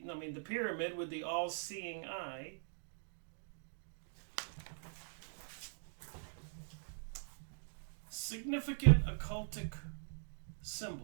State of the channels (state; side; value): silent; left; digital silence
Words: pyramid with the all-seeing eye. Significant occultic